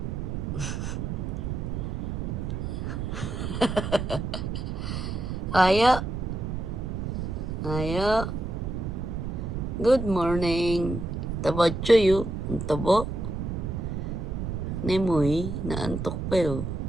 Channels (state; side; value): noise; right; rumble, 3 dB below the sound